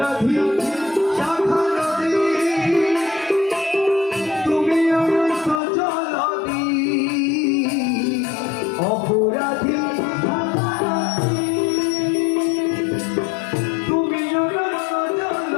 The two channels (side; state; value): right; drops out; at 5.6 s